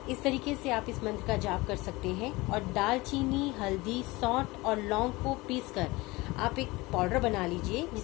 इस तरीके से आप इस मंत्र का जाप कर सकते हैं। और दालचीनी, हल्दी, सौंठ और लौंग को पीसकर आप एक पाउडर बना लीजिए,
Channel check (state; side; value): quieter; right; 22.0 dB